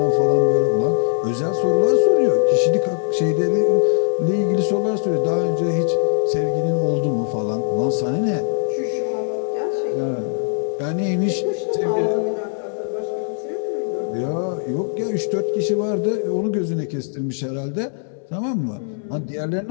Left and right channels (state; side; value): silent; right; 62 dB below the other